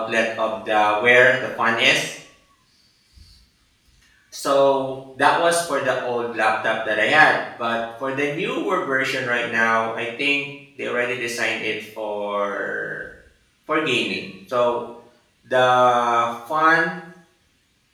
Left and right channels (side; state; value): both; identical; correlation 1.00